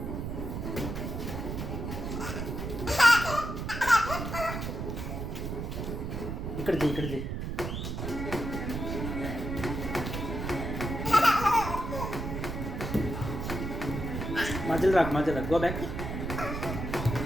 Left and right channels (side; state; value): right; noise; rumble, 4 dB below the sound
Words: ఇక్కడ చేయి, ఇక్కడ చేయి. మధ్యలో రాకు, మధ్యలో రాకు. Go back.